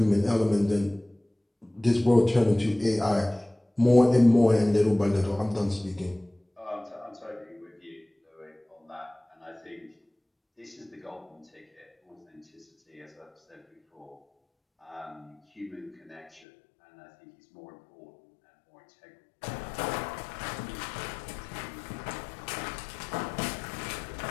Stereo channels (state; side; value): drops out; right; at 16.4 s